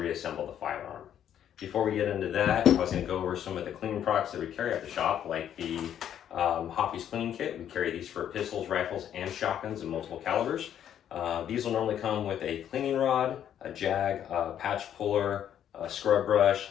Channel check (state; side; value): quieter; right; 10.0 dB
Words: the firearm. Before we get into that, I was going to go over some of the cleaning products that we carry at the shop, like the Hoppy's cleaning kit. We carry these for pistols, rifles, and shotguns in multiple calibers. These will normally come with a cleaning rod, a jag, a patch puller, a scrub brush,